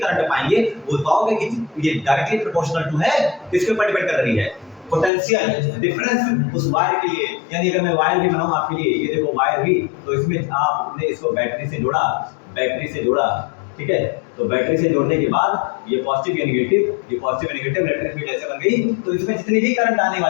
पाएंगे वो पाओगे कि ये डायरेक्टली प्रोपोर्शनल टू है, किसके ऊपर डिपेंड कर रही है, पोटेंशियल डिफरेंस उस वायर के लिए। यानी अगर मैं वायर भी बनाऊं आपके लिए, ये देखो वायर भी, तो इसमें आपने इसको बैटरी से जोड़ा, ठीक है, तो बैटरी से जोड़ने के बाद ये पॉजिटिव या नेगेटिव इलेक्ट्रिक फील्ड ऐसे बन गई। तो इसमें जितनी भी करंट आने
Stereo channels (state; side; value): drops out; right; at 5.1 s